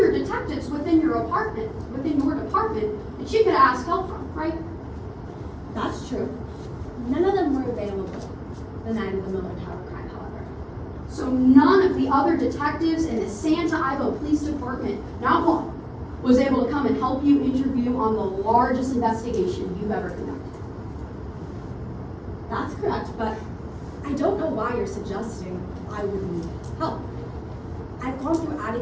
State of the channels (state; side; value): identical; both; correlation 1.00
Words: detectives within your department, that you could ask help from, right? That's true. None of them were available the night of the Miller Tower crime, however. So none of the other detectives in the Santa Ivo Police Department, not one, was able to come and help you interview on the largest investigation you've ever conducted. That's correct, but I don't know why you're suggesting I would need help. I've gone through